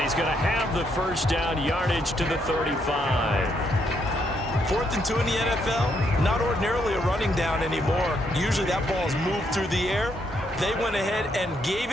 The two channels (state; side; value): normal; both; correlation 0.75